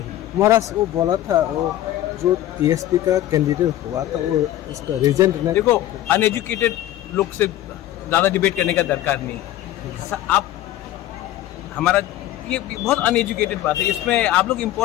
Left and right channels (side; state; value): right; quieter; 13.5 dB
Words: महाराज वो बोला था, वो जो TSP का कैंडिडेट हुआ था वो उसका रिजल्ट नहीं। देखो, अनएजुकेटेड लोग से ज़्यादा डिबेट करने का दरकार नहीं। आप हमारा ये बहुत अनएजुकेटेड बात है, इसमें आप लोग